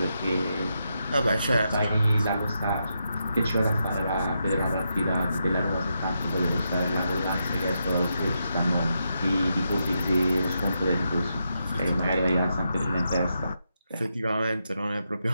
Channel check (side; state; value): both; inverted; correlation -0.84